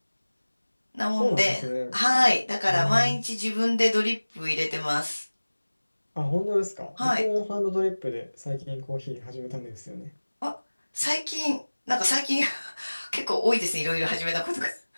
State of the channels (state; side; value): inverted; both; correlation -1.00